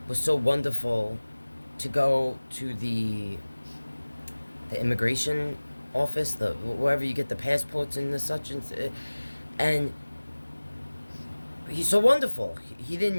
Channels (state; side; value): inverted; both; correlation -1.00